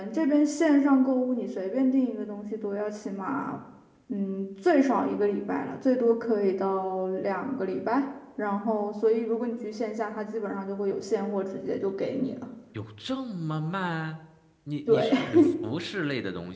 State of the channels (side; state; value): both; identical; correlation 1.00